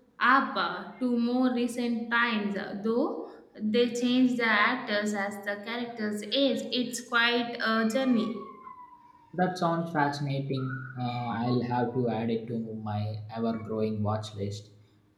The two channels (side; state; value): both; identical; correlation 1.00